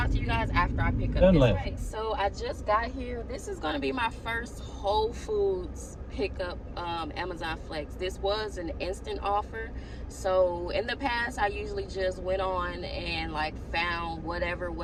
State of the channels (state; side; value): identical; both; correlation 1.00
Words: to you guys after I pick up this. Right, so I just got here. This is going to be my first Whole Foods pickup Amazon Flex. This was an instant offer. So in the past, I usually just went on and like found whatever